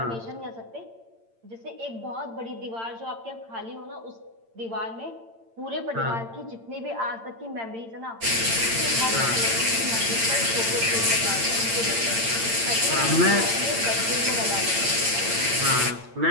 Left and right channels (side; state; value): left; late; 8.8 ms